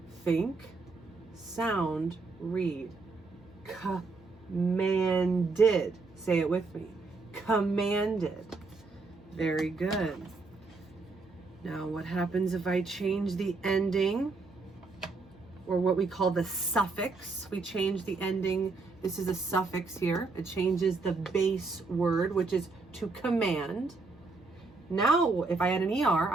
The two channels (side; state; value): left; quieter; 3.8 dB